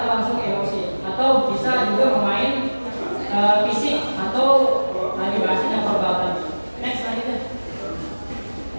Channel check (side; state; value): both; inverted; correlation -1.00